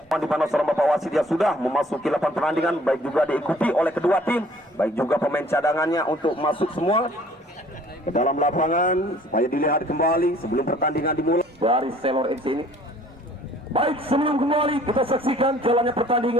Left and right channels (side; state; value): both; normal; correlation 0.55